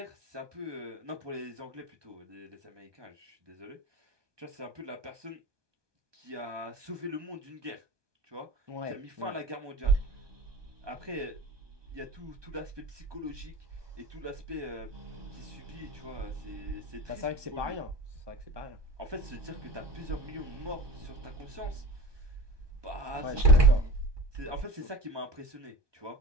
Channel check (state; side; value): late; left; 1.2 ms